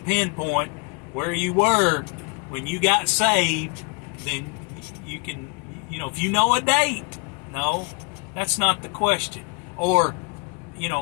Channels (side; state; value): right; quieter; 33.2 dB